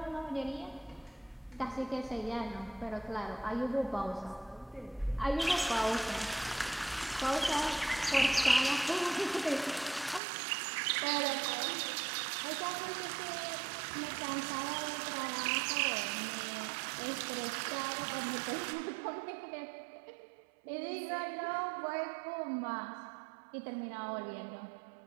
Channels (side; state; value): left; drops out; at 10.2 s